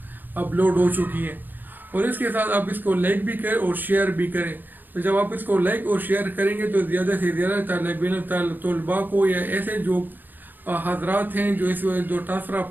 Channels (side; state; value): left; late; 0.089 ms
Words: अपलोड हो चुकी है। और इसके साथ आप इसको लाइक भी करें और शेयर भी करें। तो जब आप इसको लाइक और शेयर करेंगे तो ज़्यादा से ज़्यादा तलबा को, या ऐसे जो हजरात हैं जो जो ट्रांसफ़र